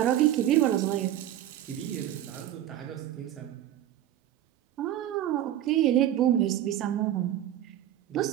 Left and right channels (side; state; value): left; quieter; 12.2 dB